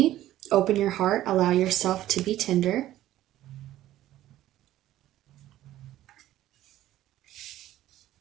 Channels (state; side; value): quieter; left; 13.9 dB